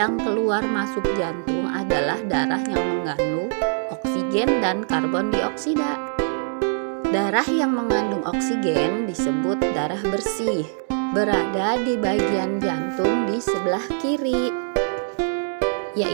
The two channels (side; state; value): left; silent; digital silence